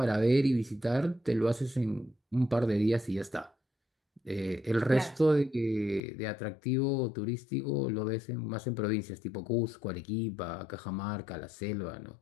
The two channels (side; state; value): right; drops out; at 6.0 s